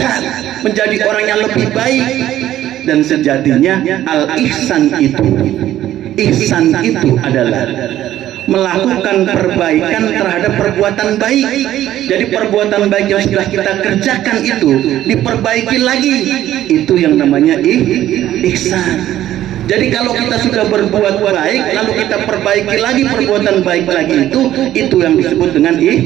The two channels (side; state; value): left; quieter; 12.9 dB